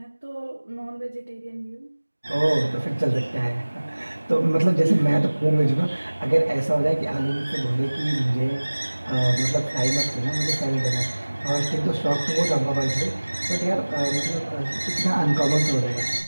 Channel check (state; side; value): inverted; both; correlation -1.00